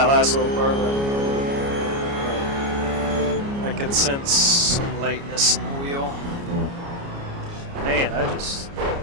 last little part right there. I could sense some lightness in the wheel. Man, I just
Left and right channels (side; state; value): left; late; 29 ms